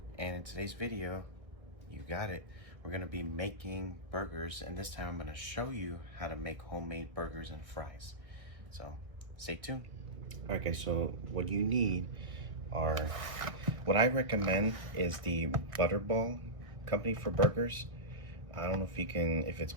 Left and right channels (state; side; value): late; left; 1.6 ms